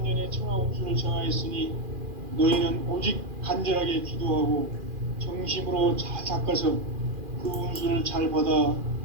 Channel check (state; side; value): late; left; 2.4 ms